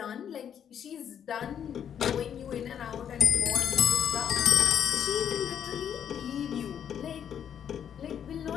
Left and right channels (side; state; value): right; quieter; 8.8 dB